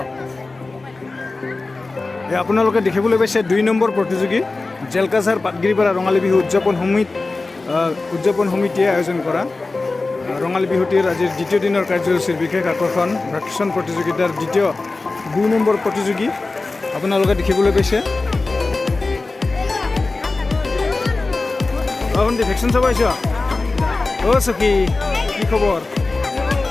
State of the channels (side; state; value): right; quieter; 3.5 dB